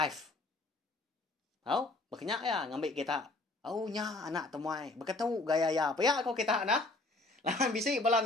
Tahu? Berkenyak ya ngambil kita. Oh nya anak temuai. Berkatu gaya ya. Paya kau kita nah. Lahan bisik balam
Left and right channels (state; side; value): quieter; right; 3.1 dB